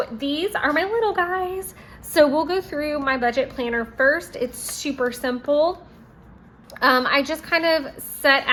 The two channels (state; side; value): identical; both; correlation 1.00